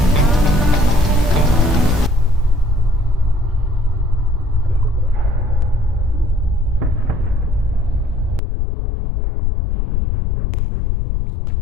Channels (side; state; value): right; drops out; at 8.4 s